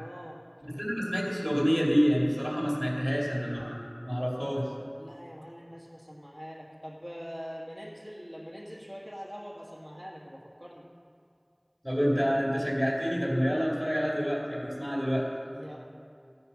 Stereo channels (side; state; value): both; identical; correlation 1.00